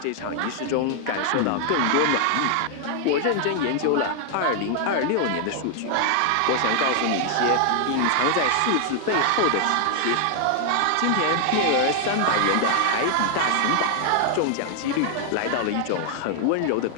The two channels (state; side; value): different; both; correlation 0.00